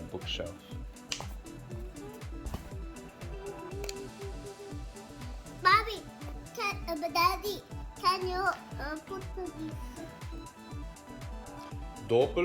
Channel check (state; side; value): identical; both; correlation 1.00